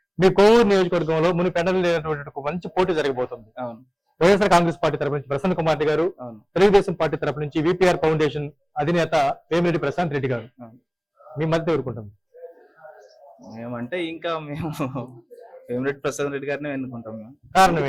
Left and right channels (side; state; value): both; identical; correlation 1.00